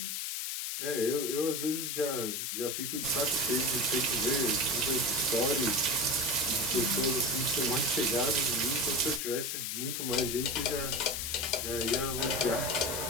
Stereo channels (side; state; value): left; noise; hiss, 2 dB below the sound